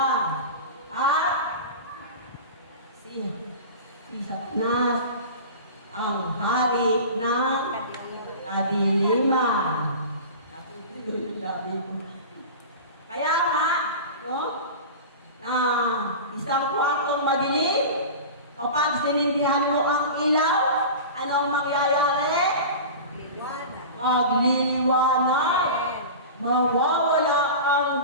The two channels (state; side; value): inverted; both; correlation -0.32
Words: At si Satanas ang hari ng kadiliman. Kaya nga, no? Na isang kwartong madilim, kapag sinindihan mo ang ilaw, anong mangyayari? Magliliwanag. Mawawala